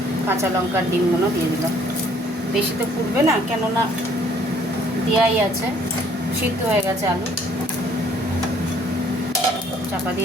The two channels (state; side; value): normal; both; correlation 0.61